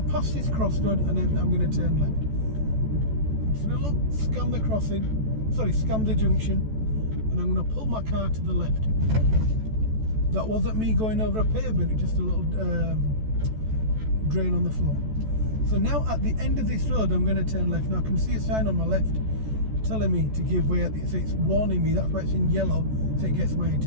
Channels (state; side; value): late; left; 14 ms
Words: this crossroad and then I'm going to turn left. I'm just going to look, scan the crossing, scan the junction, and I'm going to pull my car to the left. That wasn't me going over a pavement, it's just a little drain on the floor. So now at the end of this road I'm going to turn left. Now I can see a sign on my left telling me to give way at the, so it's warning me, that's why it's in yellow, so it gets my